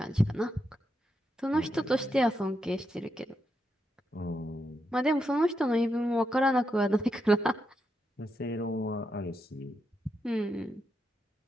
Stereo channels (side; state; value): both; normal; correlation 0.83